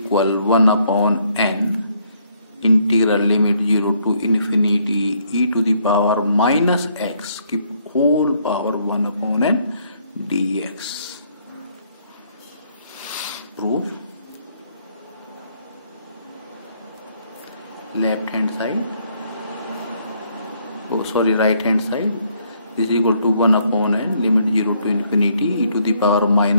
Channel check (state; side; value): inverted; both; correlation -0.69